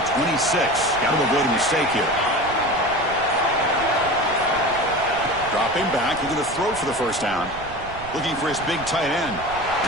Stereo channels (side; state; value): right; noise; rumble, 15 dB below the sound